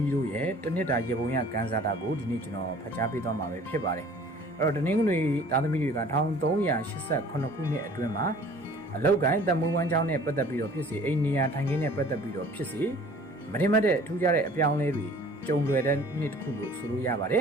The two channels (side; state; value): both; normal; correlation 0.50